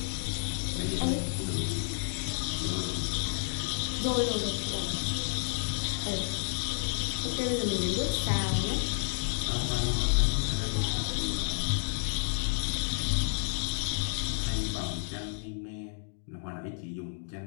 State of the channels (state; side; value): silent; right; 57 dB below the other